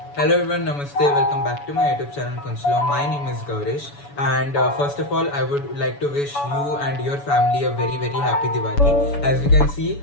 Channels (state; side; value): late; right; 7.0 ms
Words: Hello everyone, Namaste. Welcome back to my YouTube channel Kunchlo. My name is Gaurish, and first of all, I would like to wish you and your family a very happy Diwali. As you can see,